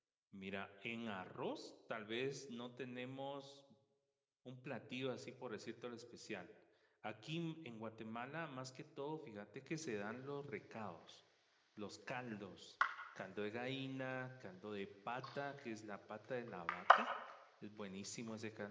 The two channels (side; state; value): both; identical; correlation 1.00